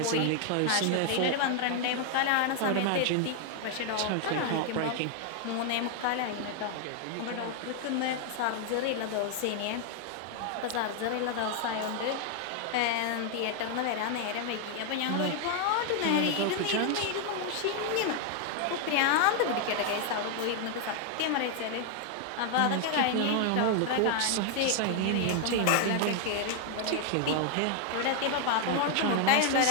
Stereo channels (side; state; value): both; different; correlation 0.00